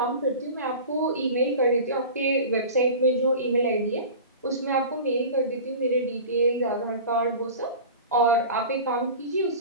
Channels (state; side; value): inverted; both; correlation -0.35